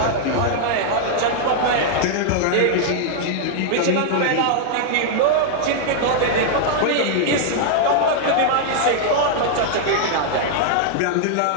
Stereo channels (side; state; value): both; different; correlation -0.01